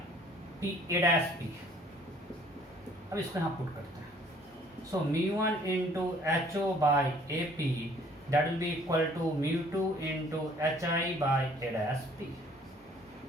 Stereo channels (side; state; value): both; normal; correlation 0.58